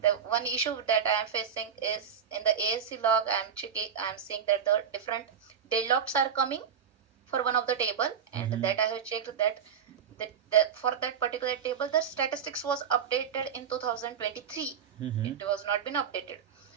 the one issue that I am facing is in the ASC log. I'm seeing that the different deadlocks are coming for one of the table, and Mm-hmm. that I have checked that for that particular table the statistics was updated in 2023. Mm-hmm. It was not been updated.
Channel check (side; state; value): left; quieter; 7.6 dB